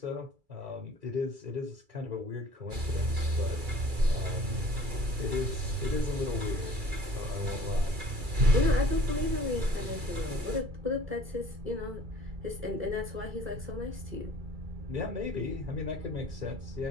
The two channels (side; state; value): left; late; 2.3 ms